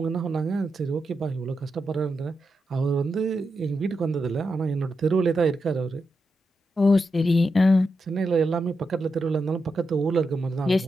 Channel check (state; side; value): normal; both; correlation 0.86